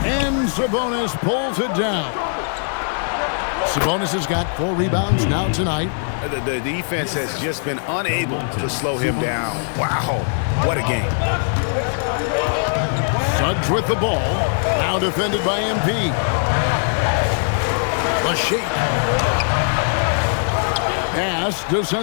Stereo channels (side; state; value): right; silent; digital silence